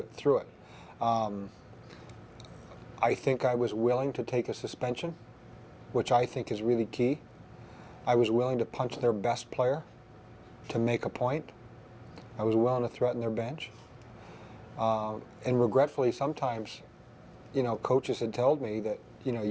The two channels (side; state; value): both; identical; correlation 1.00